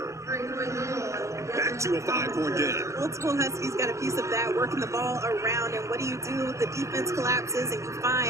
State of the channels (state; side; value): late; left; 0.14 ms